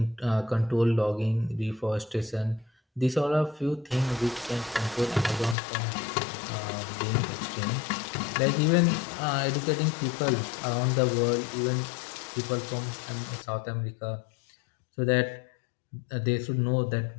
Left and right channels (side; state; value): right; drops out; at 5.6 s